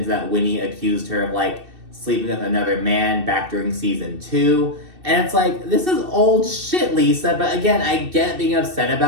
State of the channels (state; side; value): late; left; 2.6 ms